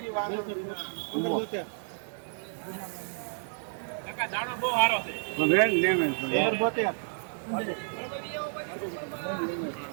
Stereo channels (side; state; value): left; silent; digital silence